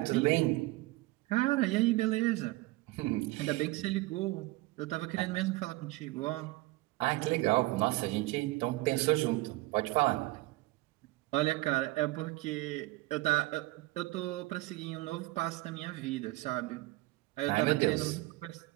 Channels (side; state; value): left; quieter; 20.3 dB